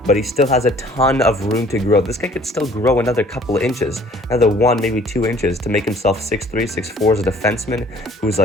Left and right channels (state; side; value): normal; both; correlation 0.54